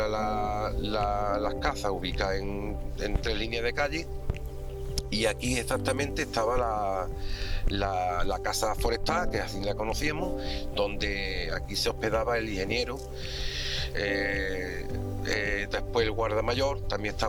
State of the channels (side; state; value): both; identical; correlation 1.00